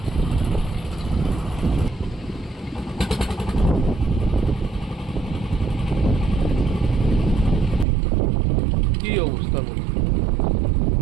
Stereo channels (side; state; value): left; drops out; at 7.9 s